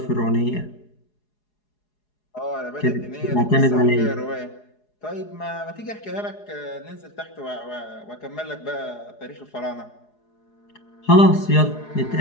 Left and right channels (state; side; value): late; right; 4.8 ms